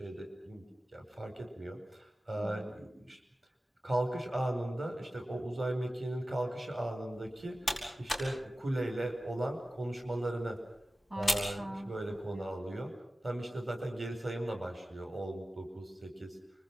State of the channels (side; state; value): both; normal; correlation 0.95